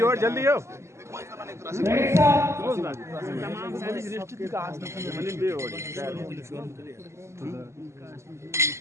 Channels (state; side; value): late; left; 0.13 ms